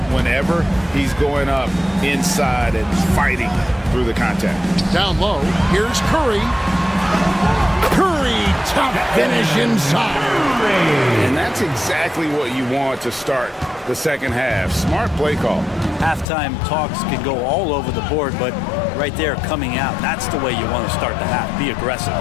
whenever he's going up inside and fighting through the contact. Down low, here's Curry. Curry, top finish inside. And that's exactly what you want to start the second half. Smart play call. Halftime talks can go all over the board, but right there coming out, that's the way you want to start the half. Be aggressive.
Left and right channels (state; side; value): drops out; right; at 16.2 s